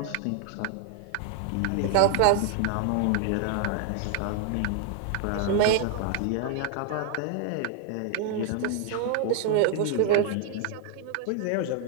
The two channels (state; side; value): different; both; correlation 0.00